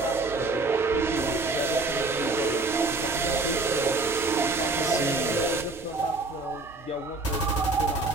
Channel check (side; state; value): left; quieter; 3.4 dB